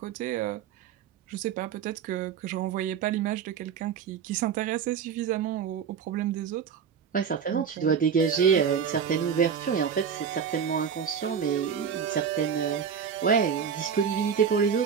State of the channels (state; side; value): quieter; left; 7.2 dB